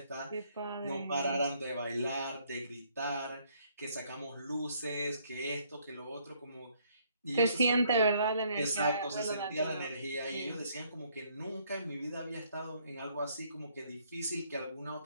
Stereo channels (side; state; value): both; inverted; correlation -0.67